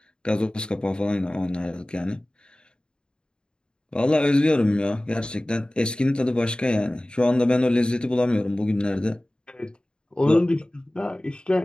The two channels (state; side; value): late; right; 0.050 ms